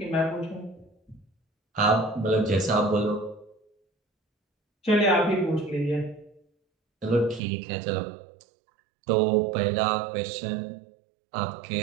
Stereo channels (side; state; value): left; drops out; at 7.4 s